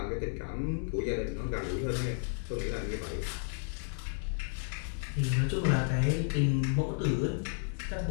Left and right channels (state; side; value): silent; right; 56 dB below the other